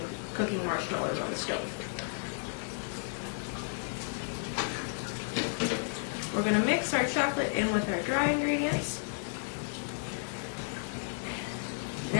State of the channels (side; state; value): right; silent; digital silence